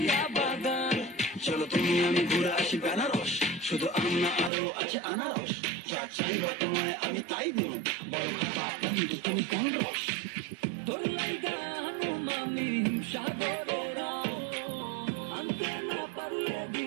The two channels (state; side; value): drops out; left; at 4.5 s